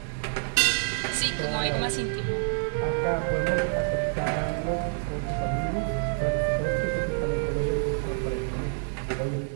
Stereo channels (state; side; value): silent; left; 60 dB below the other